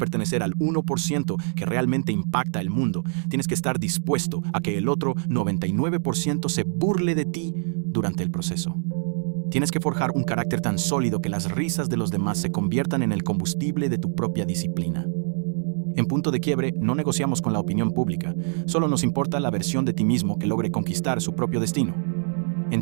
al 1% que realmente impacta el mundo, tienes que estar dispuesto a que el otro 99% se burle de ti durante el proceso. Tienes que forjar un carácter tan sólido que las risas de los demás se conviertan en el combustible de tu propia disciplina. En punto de quiebre, no negociamos con la opinión pública, solo nos importa la versión de ti mismo que logre conquistar su propio destino.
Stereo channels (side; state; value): left; silent; digital silence